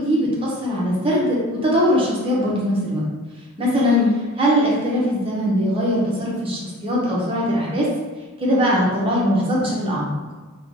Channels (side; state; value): both; normal; correlation 0.45